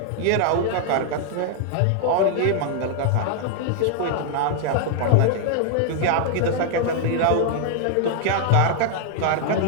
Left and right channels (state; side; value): different; both; correlation 0.00